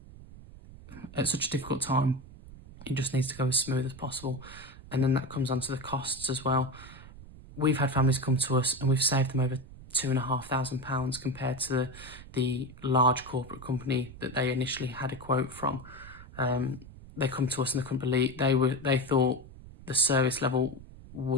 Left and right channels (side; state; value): right; noise; rumble, 17 dB below the sound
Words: at such a difficult time. It just needs to go as smooth as possible. And then that comes onto the costs as well. We've had families come to us and we've saved them over £2,500 compared to the large corporate company that they initially had a quote from. They come to us and they couldn't believe, they thought the service level